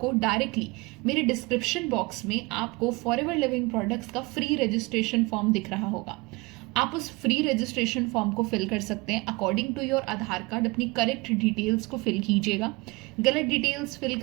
डायरेक्टली मेरे डिस्क्रिप्शन बॉक्स में आपको फॉरएवर लिविंग प्रोडक्ट्स का फ्री रजिस्ट्रेशन फॉर्म दिख रहा होगा। आप उस फ्री रजिस्ट्रेशन फॉर्म को फिल कर सकते हैं according to your Aadhaar card. अपनी करेक्ट डिटेल्स को फिल कीजिएगा। गलत डिटेल्स फिल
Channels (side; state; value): left; quieter; 25.2 dB